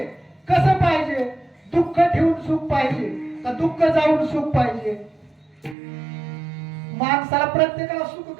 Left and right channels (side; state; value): left; drops out; at 5.8 s